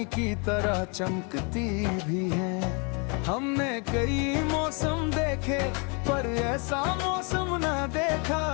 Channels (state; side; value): quieter; right; 34.4 dB